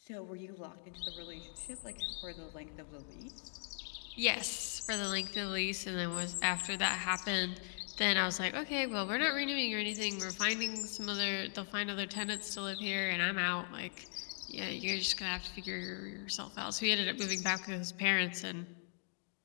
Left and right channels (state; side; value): silent; right; 52 dB below the other